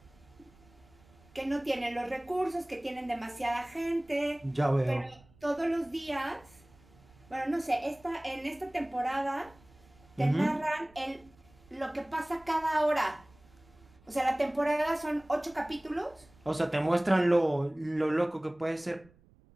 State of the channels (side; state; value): right; noise; rumble, 28 dB below the sound